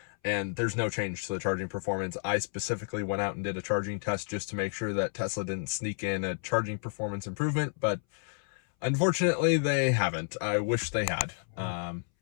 and there's no change to the charging performance. I specifically went out and did a charging test just to make sure that Tesla didn't sneak in a charging performance improvement, but unfortunately they haven't. I wish they had.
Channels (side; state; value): right; silent; 57 dB below the other